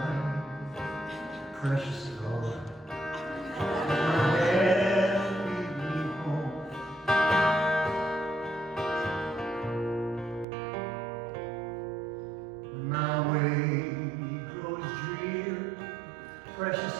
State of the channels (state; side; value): drops out; left; at 10.5 s